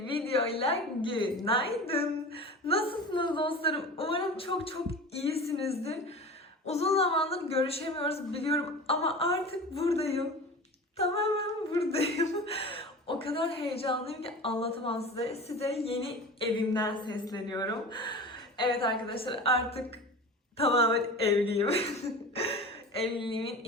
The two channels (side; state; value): both; normal; correlation 0.34